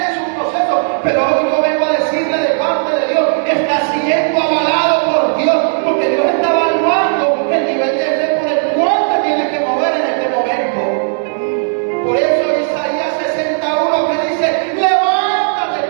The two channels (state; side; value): silent; left; digital silence